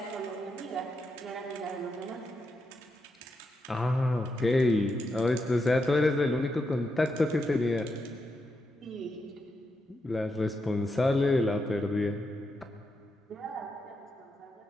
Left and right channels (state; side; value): normal; both; correlation 0.84